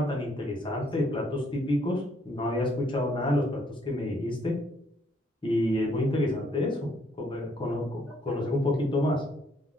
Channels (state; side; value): normal; both; correlation 0.68